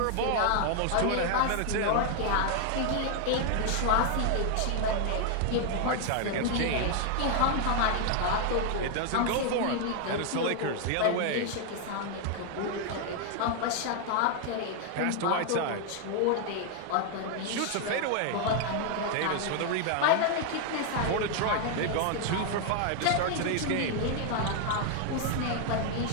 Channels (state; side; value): different; both; correlation 0.00